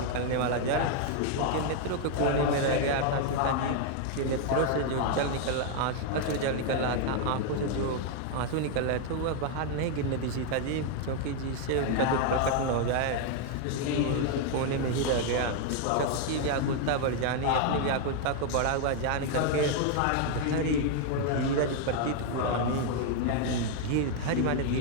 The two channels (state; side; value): different; both; correlation 0.00